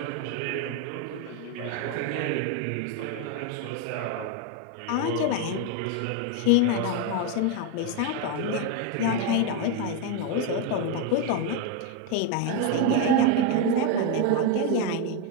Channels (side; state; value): both; different; correlation 0.02